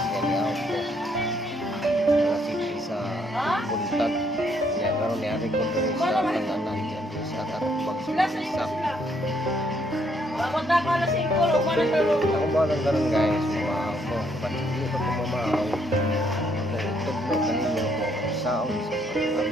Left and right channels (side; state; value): both; normal; correlation 0.70